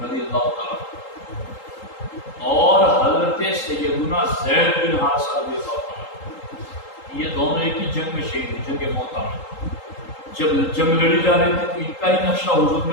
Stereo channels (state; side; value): late; right; 3.8 ms